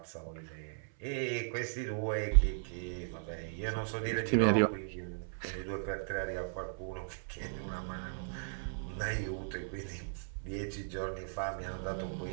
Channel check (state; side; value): silent; left; 53 dB below the other